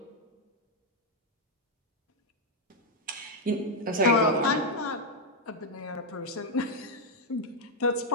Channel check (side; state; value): both; normal; correlation 0.00